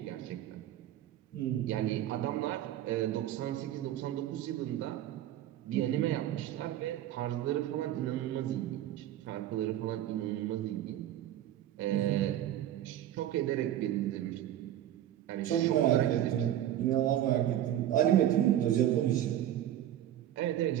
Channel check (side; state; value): left; quieter; 12.1 dB